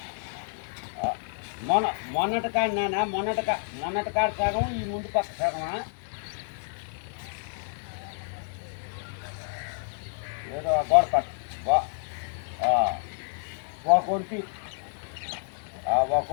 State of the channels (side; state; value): right; silent; digital silence